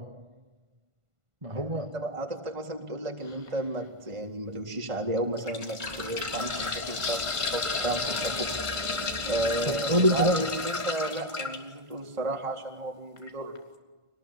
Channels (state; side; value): late; left; 1.5 ms